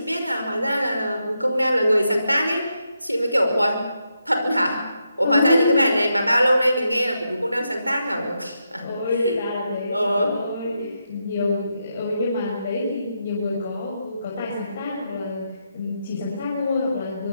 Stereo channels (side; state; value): both; inverted; correlation -0.83